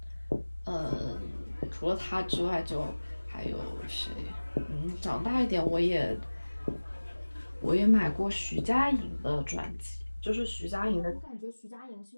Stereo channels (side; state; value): both; inverted; correlation -1.00